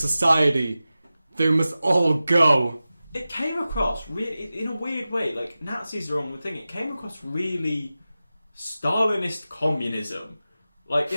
They must all go." It came across really, in a weird way, like Nazis are on the thing. It came across really Stalinist communism. Like,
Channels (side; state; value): both; inverted; correlation -0.95